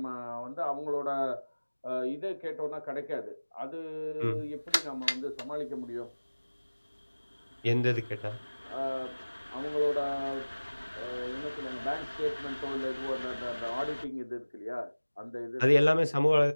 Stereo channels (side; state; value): both; inverted; correlation -1.00